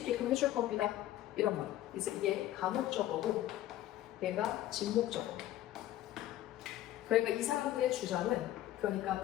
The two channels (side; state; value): right; quieter; 13.7 dB